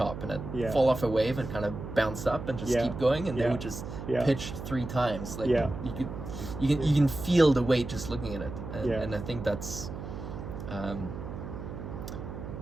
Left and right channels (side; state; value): right; noise; hum, 9 dB below the sound